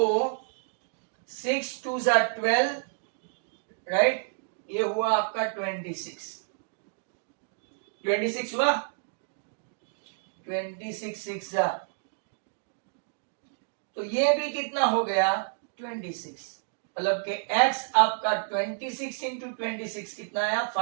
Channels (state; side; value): silent; left; digital silence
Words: 6 2 12 राइट, ये हुआ आपका 26 हुआ, 26 6 तो ये भी कितना हो गया, 26, मतलब कि x आपका 26 इंटू 26 कितना आया,